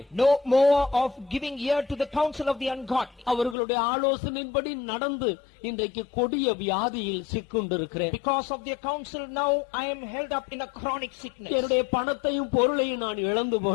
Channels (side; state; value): right; drops out; at 3.6 s